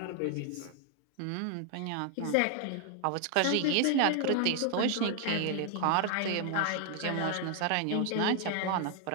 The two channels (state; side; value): different; both; correlation 0.00